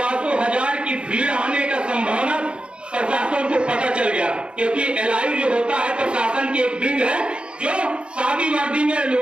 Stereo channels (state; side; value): late; left; 0.056 ms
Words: की भीड़ आने का संभावना प्रशासन को पता चल गया। क्योंकि एलआई जो होता है प्रशासन की एक विंग है जो शादी वादी में